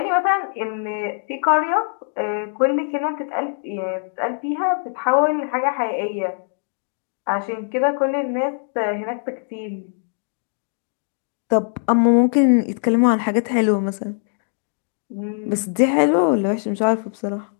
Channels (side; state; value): right; silent; 64 dB below the other